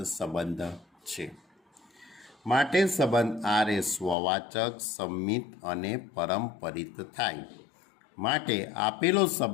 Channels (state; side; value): drops out; right; at 4.2 s